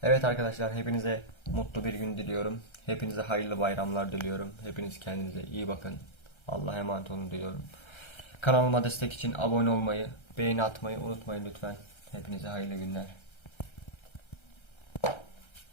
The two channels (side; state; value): right; late; 1.3 ms